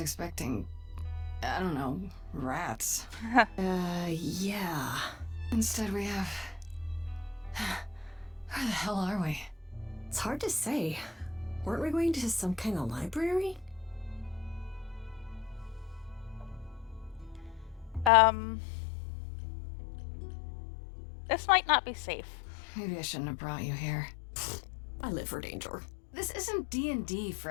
I don't know, rats. Yeah. Instead, we have. Where the hell are we? It's hard to say. Weren't we going to some kind of library? This might not be safe. Maybe I shouldn't have brought you here. I live for danger. This isn't D&D,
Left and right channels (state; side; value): drops out; right; at 18.1 s